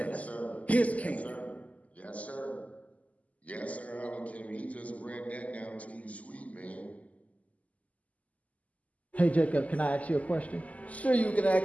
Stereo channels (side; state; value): right; late; 0.072 ms